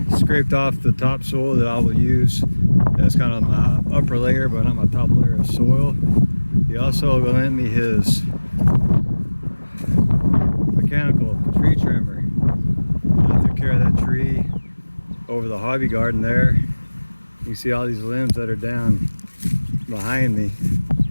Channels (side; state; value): both; inverted; correlation -1.00